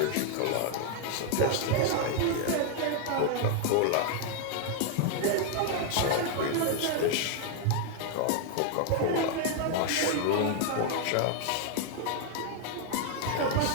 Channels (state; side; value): different; both; correlation 0.00